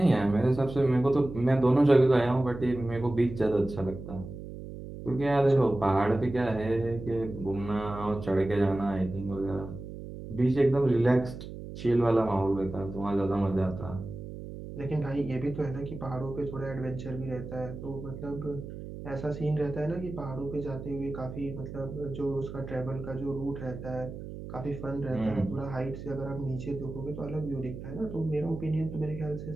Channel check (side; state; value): right; noise; hum, 10 dB below the sound